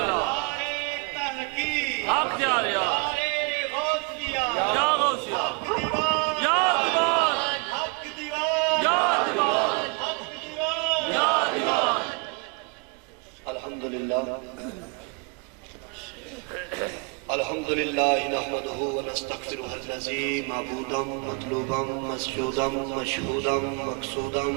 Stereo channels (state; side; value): quieter; left; 32.1 dB